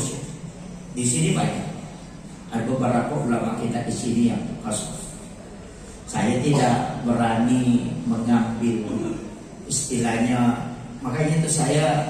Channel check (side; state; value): both; identical; correlation 1.00